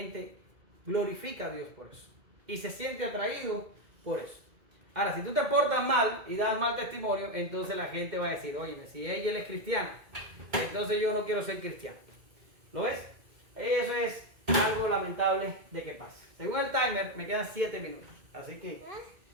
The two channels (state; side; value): late; left; 2.2 ms